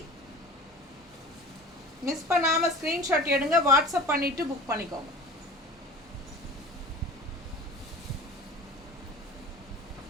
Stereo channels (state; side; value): normal; both; correlation 0.38